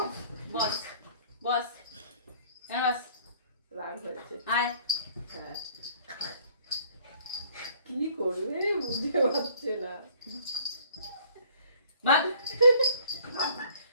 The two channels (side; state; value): both; inverted; correlation -0.56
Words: বস বস বস, রাগ হয়েছে। আয়। হ্যাঁ, কি করবে বুঝতে পারছে না। ভাগ।